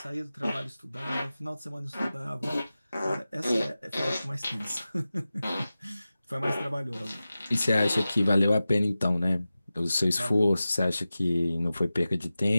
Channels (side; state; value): both; inverted; correlation -0.95